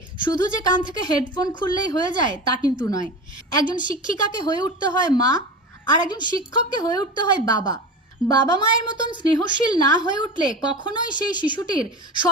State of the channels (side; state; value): both; normal; correlation 0.29